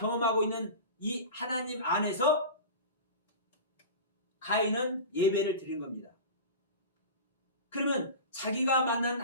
있는 이 하나님 안에서 가인은 예배를 드린 겁니다. 그러면 자기가 만난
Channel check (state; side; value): inverted; both; correlation -0.31